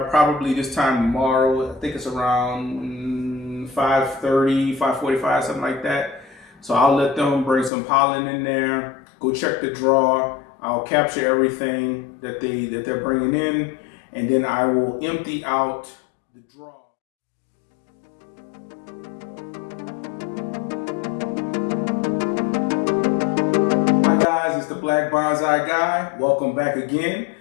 probably this time tomorrow. I think it's around 5:30, 5:45, something like that. So I'll let them bring some pollen in there, go check the draw. I'll capture everything that they're bringing in, and then I will empty out the draw. Hi guys, it's the Black Bonsai Guy. Welcome back again.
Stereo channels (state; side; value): drops out; right; at 7.7 s